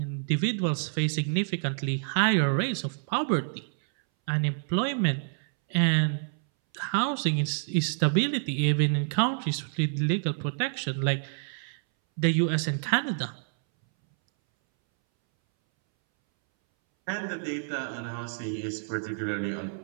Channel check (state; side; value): silent; left; 59 dB below the other